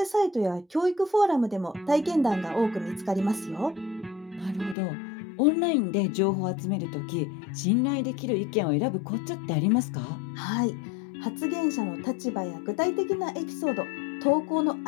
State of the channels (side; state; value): right; drops out; at 4.8 s